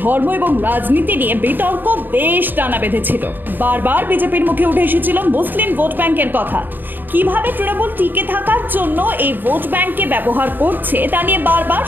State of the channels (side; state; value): left; late; 0.091 ms